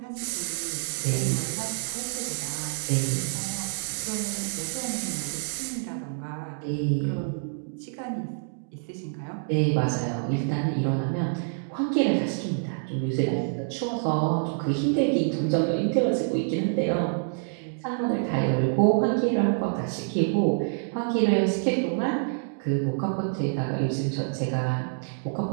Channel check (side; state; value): left; silent; digital silence